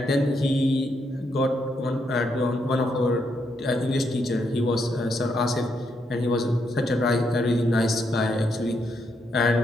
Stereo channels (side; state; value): both; normal; correlation 0.78